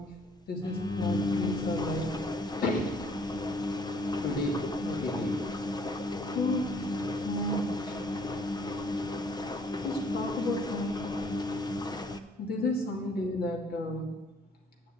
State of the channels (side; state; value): both; normal; correlation 0.61